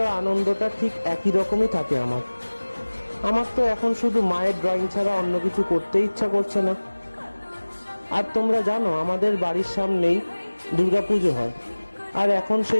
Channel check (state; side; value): inverted; both; correlation -1.00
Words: আনন্দটা ঠিক একই রকমই থাকে আমার তো এখন শুধু মায়ের ড্রয়িং ছাড়া অন্য কিছু করতে ইচ্ছা করছে না। আর তোমরা জানো, আমাদের বাড়ির সামনেই দুর্গাপুজো হয়, আর এখন